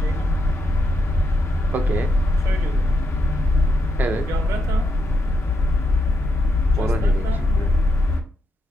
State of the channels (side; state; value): both; normal; correlation 0.81